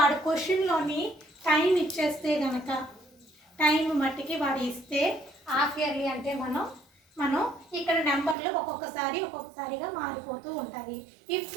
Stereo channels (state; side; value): drops out; left; at 8.3 s